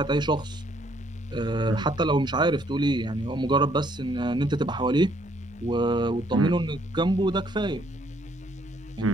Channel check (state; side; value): normal; both; correlation 0.67